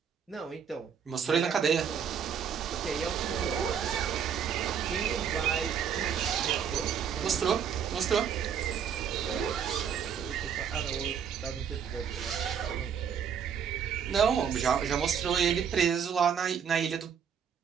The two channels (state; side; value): quieter; left; 7.7 dB